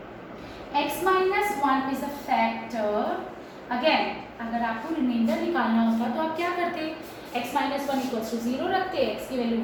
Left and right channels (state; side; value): identical; both; correlation 1.00